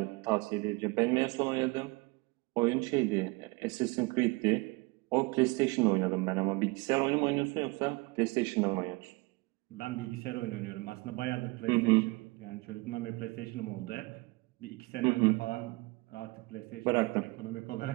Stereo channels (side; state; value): left; quieter; 25.2 dB